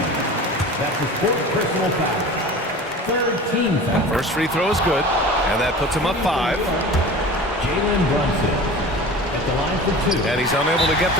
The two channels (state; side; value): normal; both; correlation 0.37